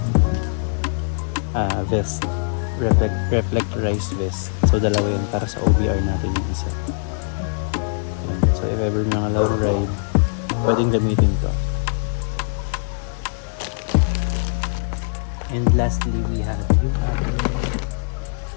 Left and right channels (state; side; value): silent; right; digital silence